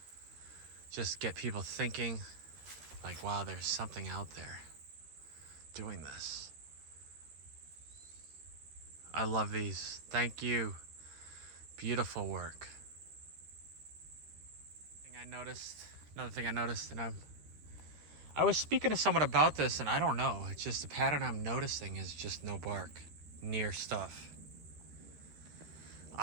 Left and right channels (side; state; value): left; late; 13 ms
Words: Just get people thinking, like, wow, there's something out there doing this. I love these. Thank you. Beautiful work. Another thing I noticed, and I was speaking to someone about this, and I don't know. It's just the pattern I'm noticing is just no bark near stuff.